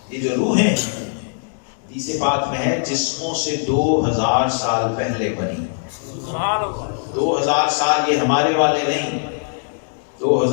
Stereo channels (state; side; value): silent; right; digital silence